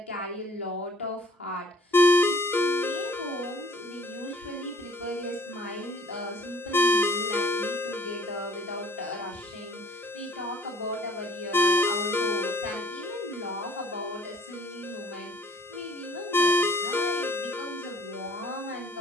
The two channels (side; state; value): both; normal; correlation 0.55